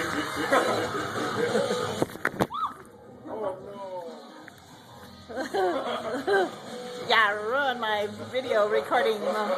Yeah, ruin my video recording.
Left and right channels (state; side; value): identical; both; correlation 1.00